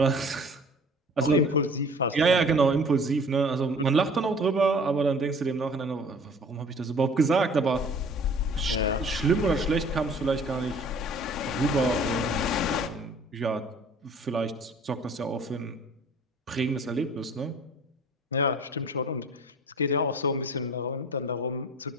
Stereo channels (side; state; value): both; normal; correlation 0.49